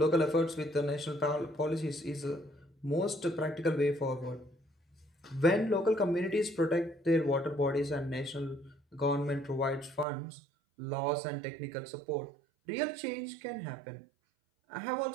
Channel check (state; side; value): drops out; left; at 10.1 s